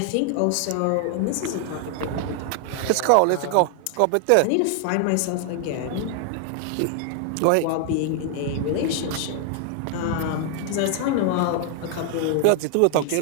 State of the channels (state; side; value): different; both; correlation 0.00